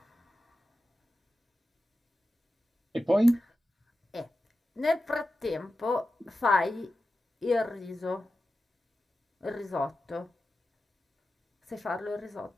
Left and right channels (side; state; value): both; normal; correlation 0.92